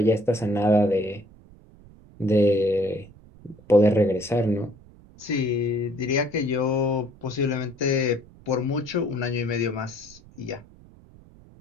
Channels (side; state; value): right; noise; rumble, 23 dB below the sound